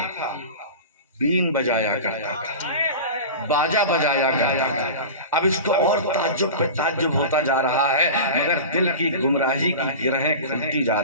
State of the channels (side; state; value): both; inverted; correlation -0.31